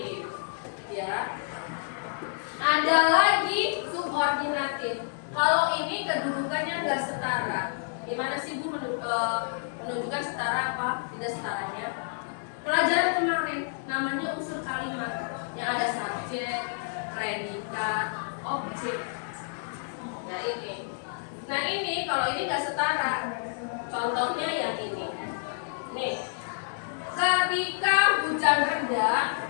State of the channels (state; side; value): silent; right; digital silence